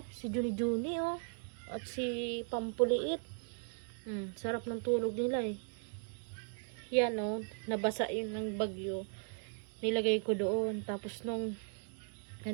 Si Juni Juni, oh. At si Pampuliit. Sarap ng tulog nila, eh. Yan, oh. Nabasa yun ng bagyo. Nilagay ko doon. Tapos nung,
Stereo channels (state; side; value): silent; left; 53 dB below the other